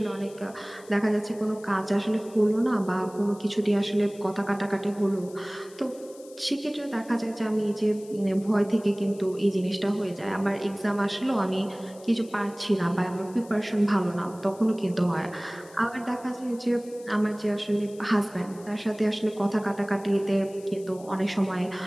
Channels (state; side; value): noise; left; hiss, 23 dB below the sound